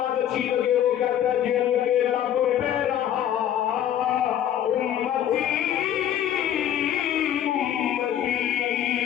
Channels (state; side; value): quieter; right; 10.6 dB